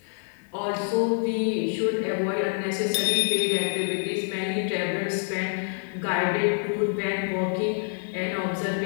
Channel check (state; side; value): silent; right; 60 dB below the other